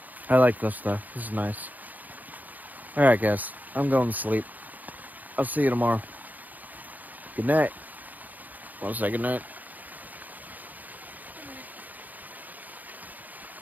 I like this stuff. This is nice. Alright guys, I'm going to sleep. I'll see you tomorrow. Good night. Want to say good night?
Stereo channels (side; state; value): left; late; 0.082 ms